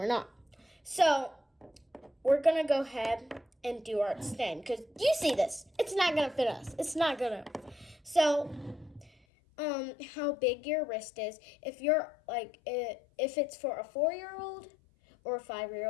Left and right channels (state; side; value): drops out; right; at 9.1 s